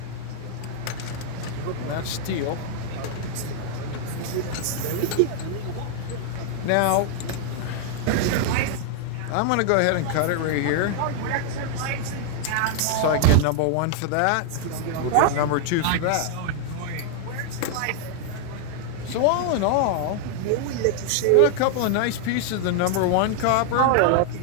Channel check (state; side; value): different; both; correlation 0.00